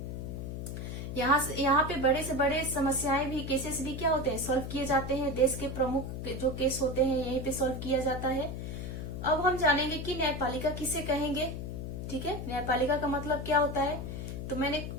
यहाँ पे बड़े से बड़े समस्याएं भी, केसेस भी क्या होते हैं, सॉल्व किए जाते हैं। देश के प्रमुख जो केस होते हैं यहीं पे सॉल्व किया जाता है। अब हम जानेंगे कि न्यायपालिका किसे कहेंगे। ठीक है, न्यायपालिका का मतलब क्या होता है। तो मैंने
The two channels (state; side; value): noise; left; hum, 6 dB below the sound